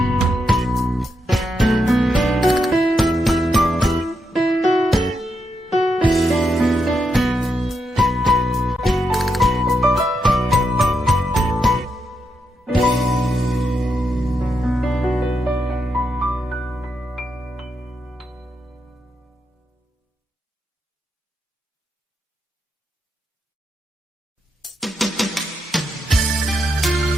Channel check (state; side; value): normal; both; correlation 0.83